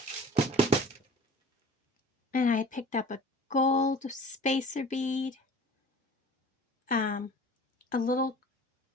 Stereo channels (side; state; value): both; normal; correlation 0.44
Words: And I picked up a gold spacer bead. Another